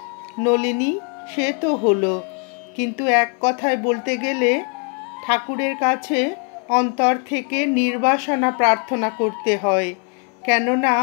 নলিনী, সে তো হলো, কিন্তু এক কথায় বলতে গেলে ঠাকুরের কাছে অন্তর থেকে নির্বাসনা প্রার্থনা করতে হয়। কেননা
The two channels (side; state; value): right; quieter; 37.4 dB